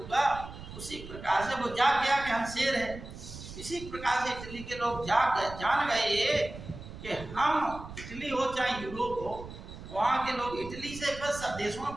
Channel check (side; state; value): right; noise; rumble, 13 dB below the sound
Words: उसी प्रकार से वो जाग गया कि हम शेर हैं। इसी प्रकार से इटली के लोग जान गए कि हम इटली हो चाहे यूरोप हो, वहाँ के लोग इटली से बस सब देशों में